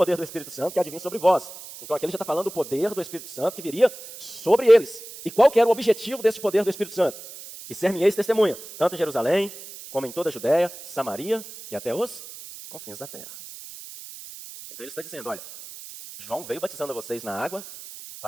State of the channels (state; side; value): noise; right; hiss, 14 dB below the sound